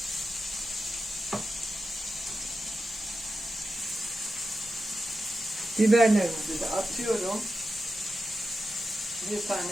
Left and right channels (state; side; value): normal; both; correlation 0.91